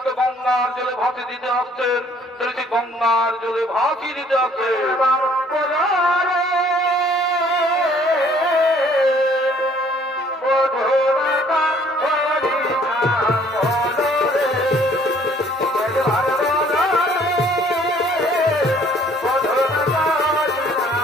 গঙ্গার জলে ভাসিয়ে দিতে আসছেন, তিনি গঙ্গার জলে ভাসিয়ে দিতে আসছেন।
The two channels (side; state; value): both; normal; correlation 0.59